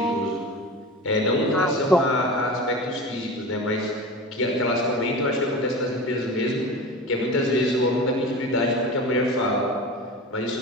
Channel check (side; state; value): both; normal; correlation 0.31